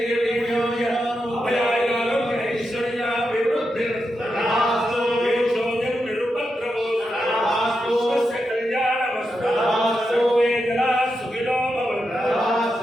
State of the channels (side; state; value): both; normal; correlation 0.87